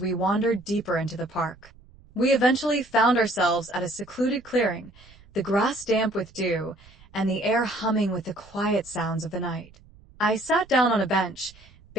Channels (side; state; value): right; noise; rumble, 26 dB below the sound